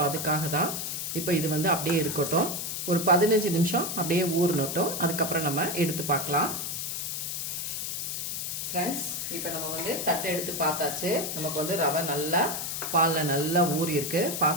அதுக்காக தான். இப்போ இது அப்படியே இருக்கட்டும். ஒரு 15 நிமிஷம் அப்படியே ஊறணும். அதுக்கப்புறம் நம்ம எடுத்து பார்க்கலாம். ஃப்ரெண்ட்ஸ், இப்போ நம்ம தட்டை எடுத்து பார்த்தாச்சு. நமக்கு ரவை நல்லா பாலில் நல்லா ஊறி இருக்கு.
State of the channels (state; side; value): noise; left; hiss, 3 dB below the sound